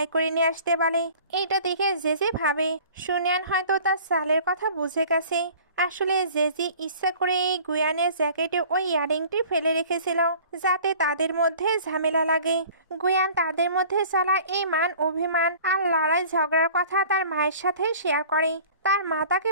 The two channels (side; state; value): both; inverted; correlation -0.47